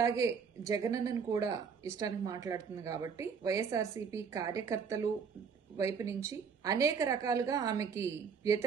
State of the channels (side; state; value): left; quieter; 6.2 dB